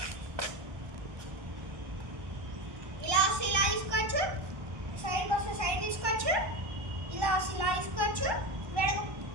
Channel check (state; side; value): late; left; 1.2 ms